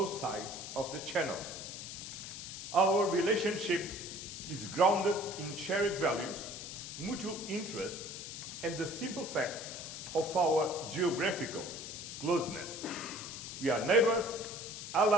sides of the channel. Our relationship is grounded in shared values, mutual interests, and the simple fact of our geographical closeness. We are neighbors,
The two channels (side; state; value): left; noise; hiss, 9 dB below the sound